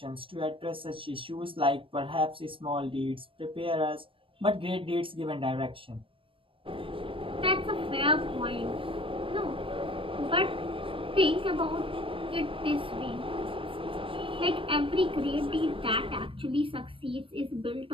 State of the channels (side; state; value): left; late; 0.25 ms